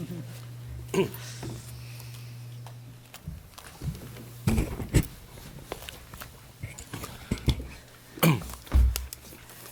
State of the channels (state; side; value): identical; both; correlation 1.00